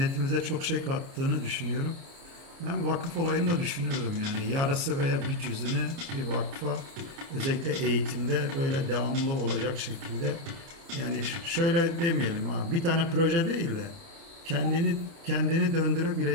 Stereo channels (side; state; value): left; late; 30 ms